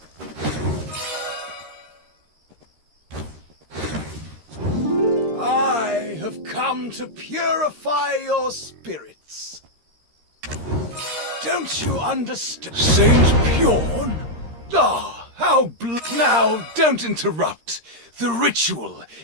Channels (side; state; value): left; late; 13 ms